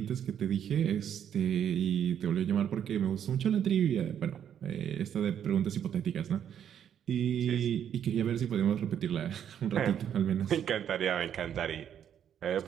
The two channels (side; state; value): left; quieter; 9.2 dB